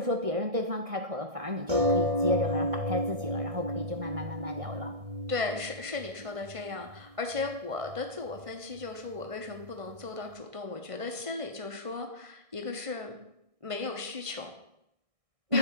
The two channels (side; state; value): left; late; 1.5 ms